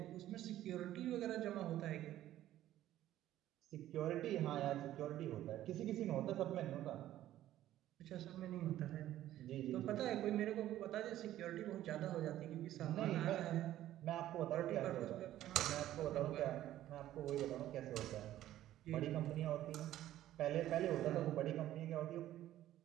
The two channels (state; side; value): quieter; left; 13.3 dB